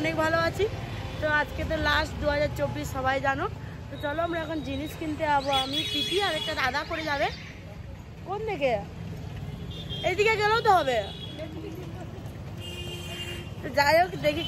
ভালো আছি। তো আজকে তো লাস্ট 2024 সবাই জানো। তো চলো আমরা এখন জিনিস কিনতে যাবো। আমি পিপি আর একটা দাদা করে যাবে। কোন দিকে? এইদিকে গেলেও তো হবে। তো যাই হোক, দেখি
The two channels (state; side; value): identical; both; correlation 1.00